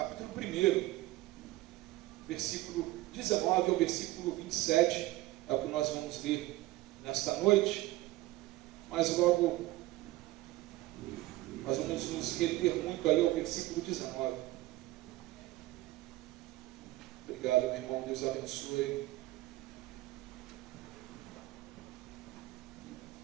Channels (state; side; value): quieter; left; 17.8 dB